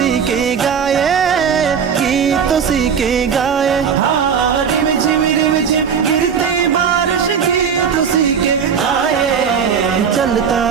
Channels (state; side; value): quieter; left; 7.0 dB